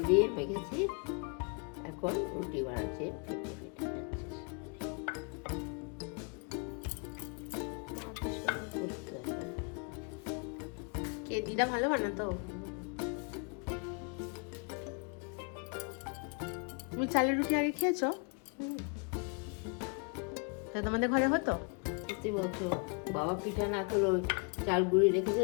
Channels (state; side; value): quieter; right; 36.4 dB